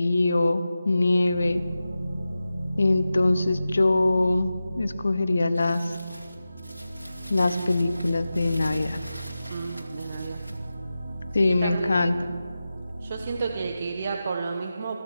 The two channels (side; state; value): both; inverted; correlation -0.93